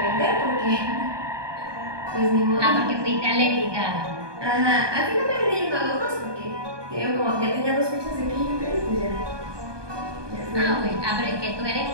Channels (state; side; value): late; left; 1.2 ms